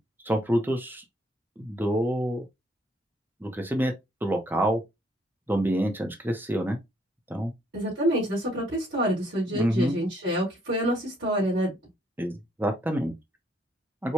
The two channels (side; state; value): both; normal; correlation 0.69